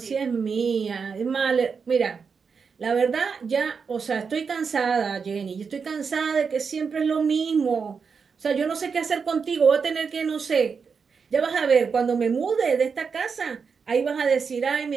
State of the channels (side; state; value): left; quieter; 5.7 dB